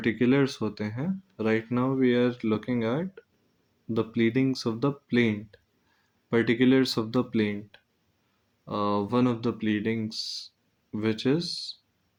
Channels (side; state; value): both; identical; correlation 1.00